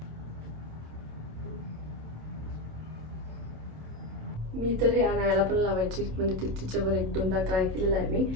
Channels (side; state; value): left; late; 27 ms